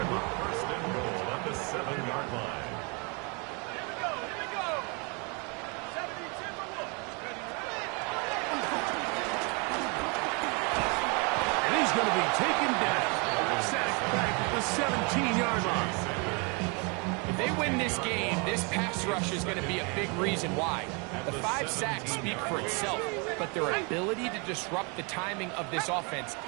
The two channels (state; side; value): quieter; left; 32.7 dB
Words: line. 1st and goal at the 7-yard line. Here we go. Here we go. 70 Timberwolves. And he's going to be taken down. Sacked back at the 17-yard line. If they win this game, this pass rush is going to be a big reason why. The 5 sacks speak for itself, but their ability to disrupt the timing of this offense,